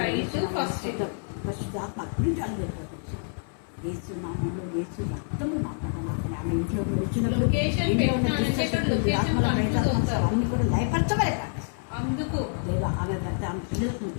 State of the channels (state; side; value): silent; right; 60 dB below the other